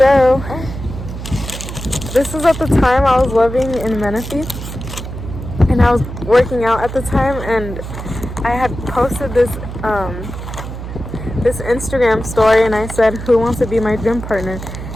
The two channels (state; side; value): noise; right; hum, 9 dB below the sound